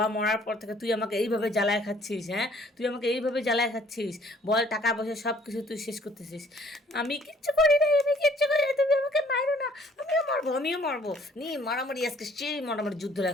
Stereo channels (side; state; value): both; normal; correlation 0.59